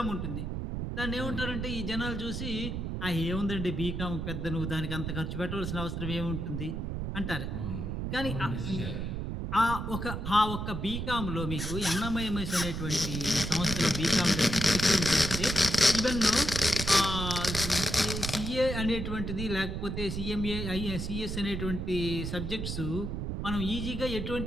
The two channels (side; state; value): right; noise; rumble, 3 dB below the sound